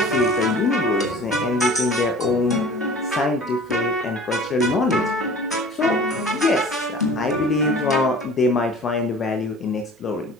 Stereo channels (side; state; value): both; normal; correlation 0.44